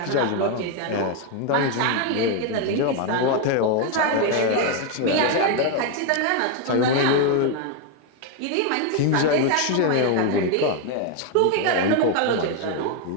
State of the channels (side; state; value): both; different; correlation 0.01